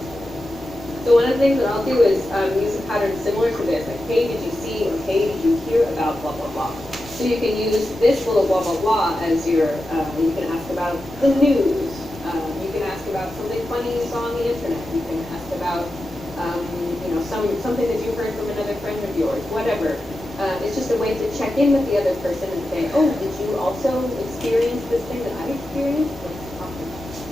So one of the things that I'll do is use a pattern similar to this, like hey, did you see or hey, did you hear about blah blah blah. So you can use this little blah blah blah as your. You can ask about the news. You can ask about something funny you saw on the internet. You can ask about something that you heard from another friend of yours. Whatever. It's just a way to check in with the other person and say, oh, did you also experience this thing that I experienced? Let's talk about it.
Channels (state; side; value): normal; both; correlation 0.91